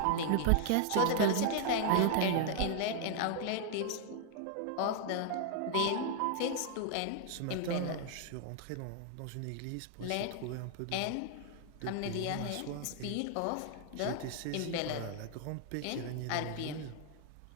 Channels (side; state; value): both; different; correlation 0.00